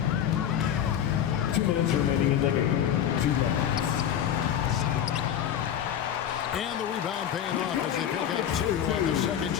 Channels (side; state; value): right; quieter; 9.7 dB